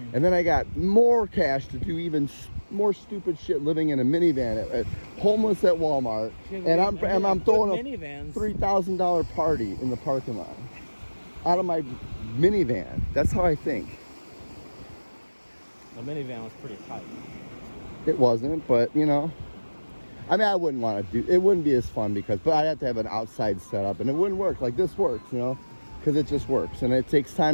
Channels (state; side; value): inverted; both; correlation -1.00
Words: and then I got more cash to do even more stupid shit, living in a minivan, homeless at Walmart, and I'm throwing a minivans. $3,000 party in the parking lot out of my minivan. That's how I think. The minivan was pretty tight. It wasn't, but you know, I mean, I wouldn't want to do. It wouldn't be as fun but I'd have to have an outside setup, and it wouldn't work like this works, you know, because it just works, and it takes